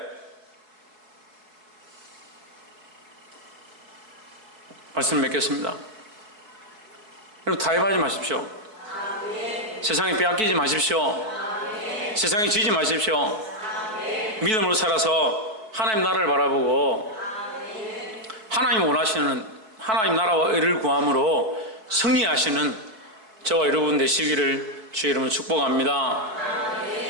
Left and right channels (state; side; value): late; left; 4.6 ms